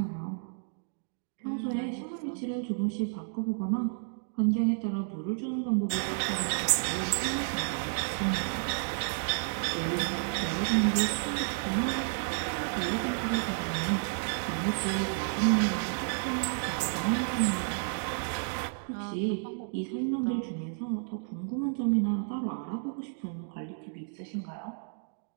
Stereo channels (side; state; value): left; silent; digital silence